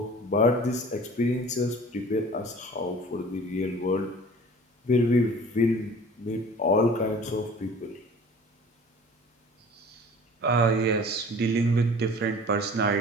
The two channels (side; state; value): both; normal; correlation 0.45